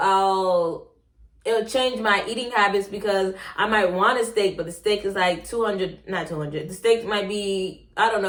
it'll change my eating habits, because I might want a steak, but the steak is like the steak might be, I don't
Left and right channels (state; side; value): identical; both; correlation 1.00